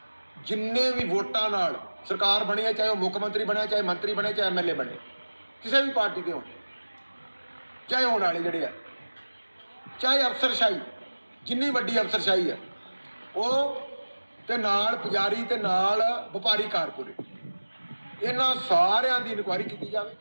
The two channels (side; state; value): both; inverted; correlation -1.00